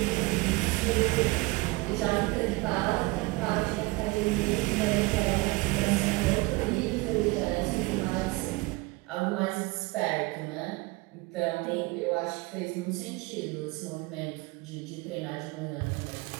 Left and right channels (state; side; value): quieter; left; 23.4 dB